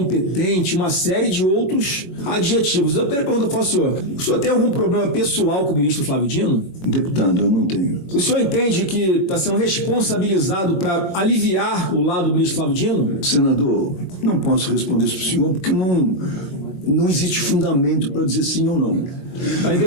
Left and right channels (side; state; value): right; late; 21 ms